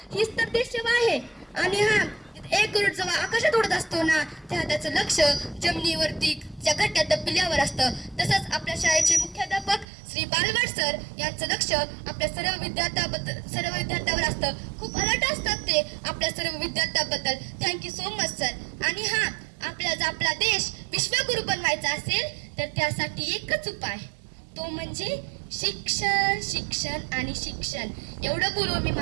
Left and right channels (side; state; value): left; drops out; at 9.9 s